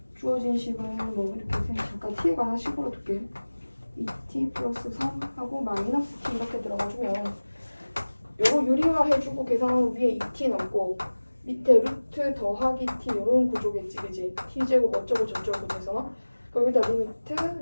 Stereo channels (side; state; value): both; inverted; correlation -1.00